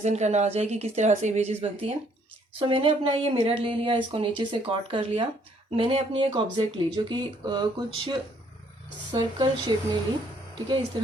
करना आ जाए कि किस तरह से इमेजेस बनती हैं। सो मैंने अपना ये मिरर ले लिया, इसको नीचे से कट कर लिया। मैंने अपनी एक ऑब्जेक्ट ली जो कि कुछ सर्कल शेप में ली, ठीक है, इस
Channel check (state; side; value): normal; both; correlation 0.65